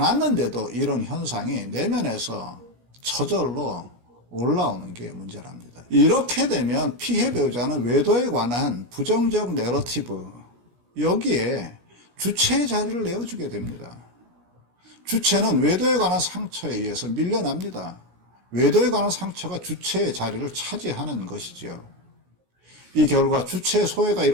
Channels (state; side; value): late; left; 17 ms